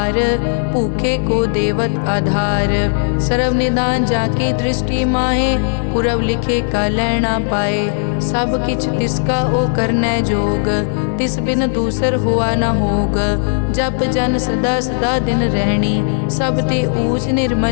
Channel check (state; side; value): silent; right; 69 dB below the other